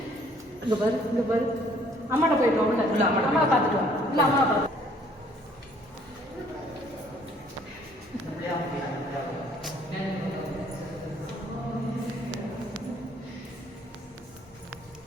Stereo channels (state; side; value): normal; both; correlation 0.61